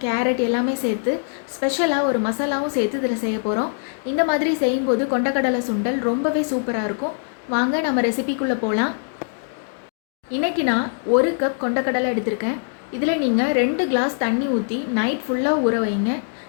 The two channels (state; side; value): silent; right; digital silence